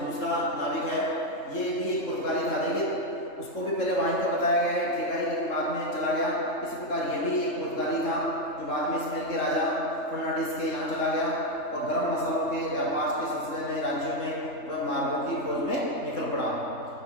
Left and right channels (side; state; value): right; late; 3.3 ms